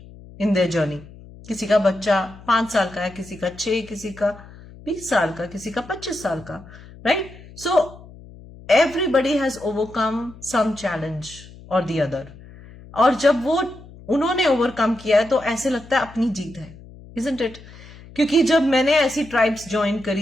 in their journey. किसी का बच्चा 5 साल का है, किसी का 6, किसी का 20 साल का, किसी का 25 साल का, right? So everybody has overcome some challenge और द अदर, और जब वो उन्होंने ओवरकम किया है तो ऐसे लगता है अपनी जीत है, isn't it? क्योंकि जब मैंने ऐसी ट्राइब्स ज्वाइन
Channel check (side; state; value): left; noise; hum, 19 dB below the sound